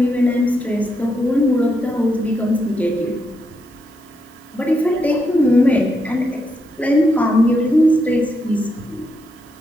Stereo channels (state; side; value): noise; right; hiss, 28 dB below the sound